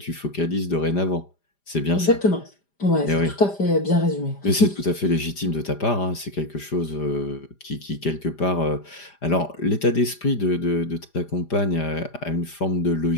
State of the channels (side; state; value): right; late; 5.0 ms